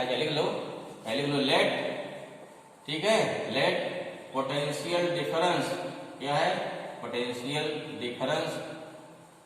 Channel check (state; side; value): identical; both; correlation 1.00